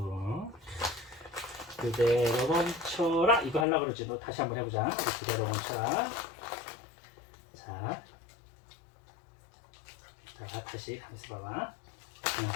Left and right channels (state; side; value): drops out; right; at 3.7 s